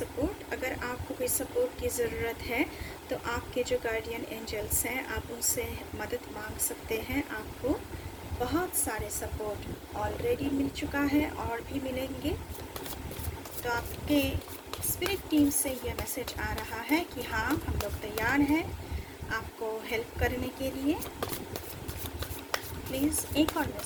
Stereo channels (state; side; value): identical; both; correlation 1.00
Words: अगर आपको कोई सपोर्ट की ज़रूरत है तो आपके जो गार्डियन एंजल्स हैं, आप उनसे मदद मांग सकते हैं। आपको बहुत सारे सपोर्ट ऑलरेडी मिल चुका है और भी मिलेंगे। तो आपके स्पिरिट टीम से ये मैसेज आ रहा है कि हाँ, हम लोग तैयार हैं आपको हेल्प करने के लिए। प्लीज़ एक और